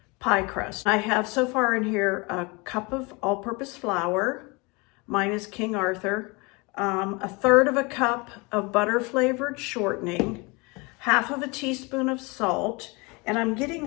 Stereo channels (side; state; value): right; quieter; 27.3 dB